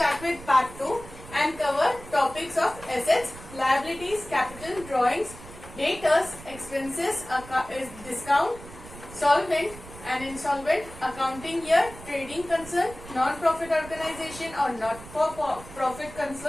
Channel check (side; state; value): right; noise; rumble, 16 dB below the sound